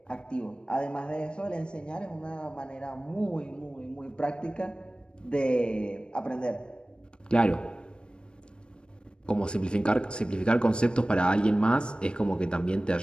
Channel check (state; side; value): late; right; 0.054 ms